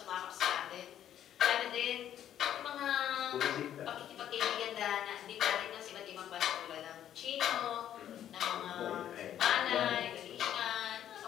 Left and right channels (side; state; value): right; quieter; 10.7 dB